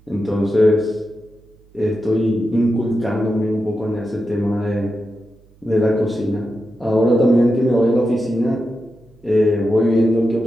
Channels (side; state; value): right; noise; hum, 29 dB below the sound